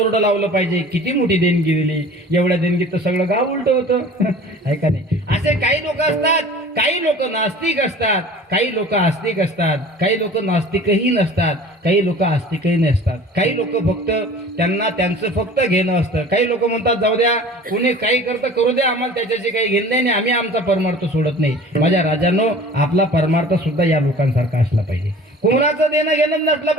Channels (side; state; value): both; normal; correlation 0.44